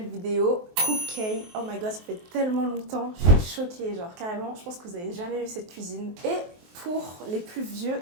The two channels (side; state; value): left; late; 23 ms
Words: vidéo Cook-K. Oh my god, ça fait tellement longtemps, je suis choquée, genre carrément, je pense que vous n'avez jamais vu cette cuisine. Et pour les plus vieux